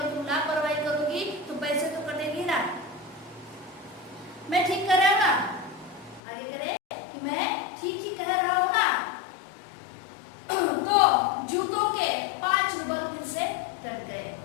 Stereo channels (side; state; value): right; drops out; at 6.2 s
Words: तुम लापरवाही करोगी तो पैसे तो कटेंगे ना। मैं ठीक कर रहा हूँ ना? आगे करे कि मैं ठीक ही कह रहा हूँ ना? तो जूतों के 5 रूबल फिर से कट गए,